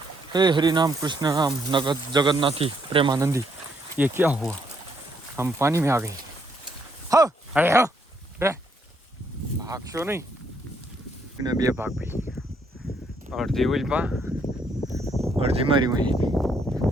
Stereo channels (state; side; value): normal; both; correlation 0.72